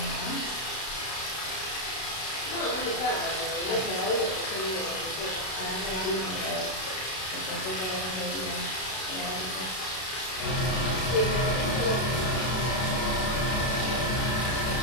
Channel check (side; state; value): right; late; 32 ms